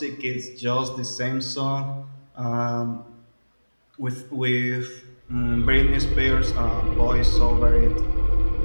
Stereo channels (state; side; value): inverted; both; correlation -1.00